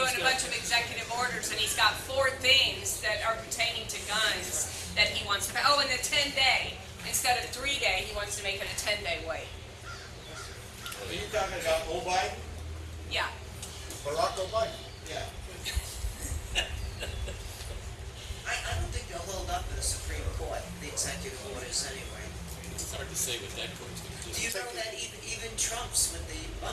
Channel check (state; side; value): identical; both; correlation 1.00